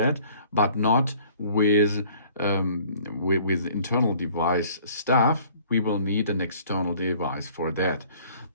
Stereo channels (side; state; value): both; inverted; correlation -0.54